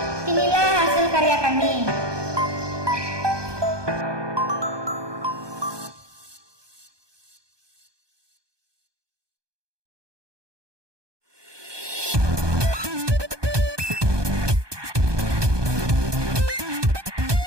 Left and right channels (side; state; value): left; late; 1.2 ms